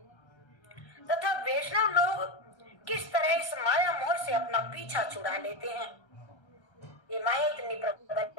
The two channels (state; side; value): late; right; 1.3 ms